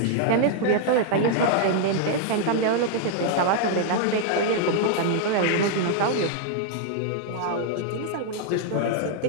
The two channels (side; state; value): both; different; correlation 0.00